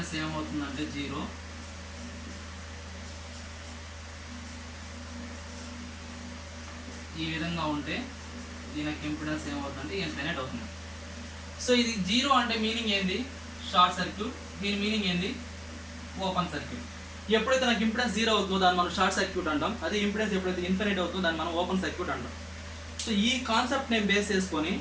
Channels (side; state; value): both; identical; correlation 1.00